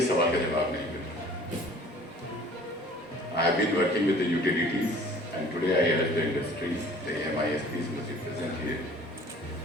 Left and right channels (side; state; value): both; normal; correlation 0.50